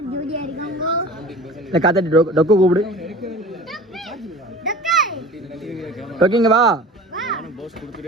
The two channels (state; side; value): normal; both; correlation 0.39